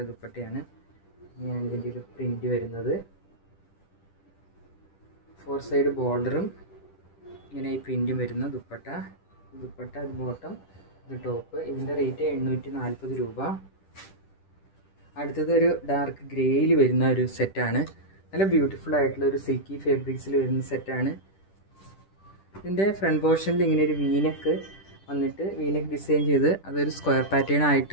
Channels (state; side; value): late; right; 10 ms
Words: ദുപ്പട്ടയാണ്. ഇങ്ങനെയാണ് ഇതിൻ്റെ ഒരു പ്രിൻ്റ് വരുന്നത്. 4 സൈഡ് ബോർഡറും ഇങ്ങനെ ഈ പ്രിൻറ്റും വരുന്ന ദുപ്പട്ട. അത് ബോട്ടം, ഇത് ടോപ്പ്. ഇതിൻ്റെ റേറ്റ് 840 രൂപ. അടുത്തത് ഒരു ഡാർക്ക് ഗ്രേയിൽ വരുന്ന ഒരു സെറ്റാണ്. നല്ല ബ്യൂട്ടിഫുൾ ആയിട്ടുള്ള ഒരു സിൽക്കി ഫാബ്രിക്സിൽ വരുന്ന സെറ്റാണ്. ഇതിൻ്റെ ഫ്രണ്ട് പോർഷനിൽ ഇങ്ങനെ ഒരു വീനക്ക് വന്നിട്ട് വീനക്ക് ഡിസൈൻ ചെയ്ത് അതൊരു സ്ക്വയർ പാറ്റേൺ